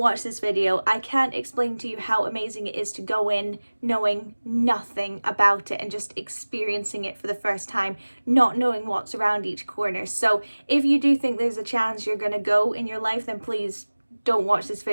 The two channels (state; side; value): inverted; both; correlation -1.00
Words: this video. I can't explain to you how amazing it is to go in knowing nothing about it and just experiencing it for the first time, not knowing what's around each corner. So if you do think there's a chance you're going to go in your life, then please don't watch this